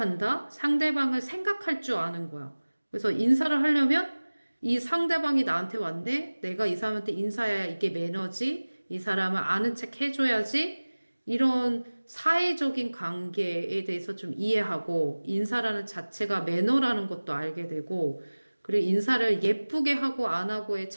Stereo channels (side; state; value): both; inverted; correlation -1.00